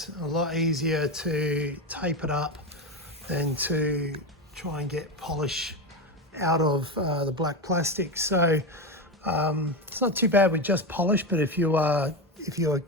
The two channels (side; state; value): both; normal; correlation 0.17